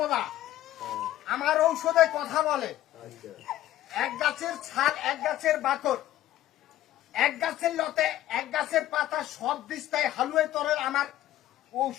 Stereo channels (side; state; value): right; quieter; 13.6 dB